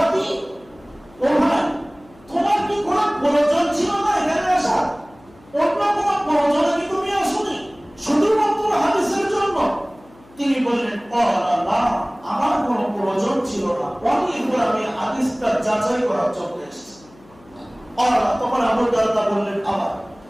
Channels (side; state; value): left; noise; hum, 26 dB below the sound